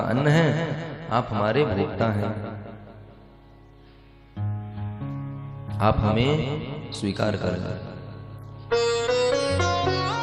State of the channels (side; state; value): both; identical; correlation 1.00